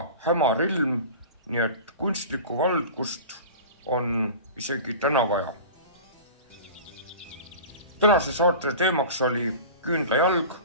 hämar ilm, nii et kunstlikku valgust on isegi täna vaja. Tänase saate teemaks oli küünlajalg.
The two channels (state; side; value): inverted; both; correlation -0.36